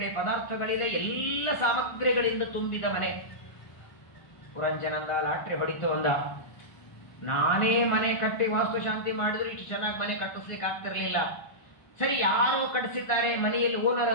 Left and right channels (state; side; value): late; right; 1.5 ms